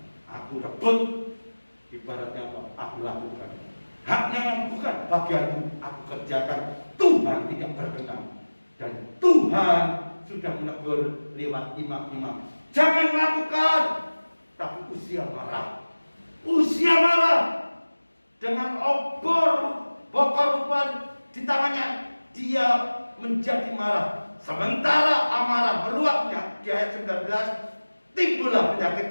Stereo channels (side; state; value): both; inverted; correlation -1.00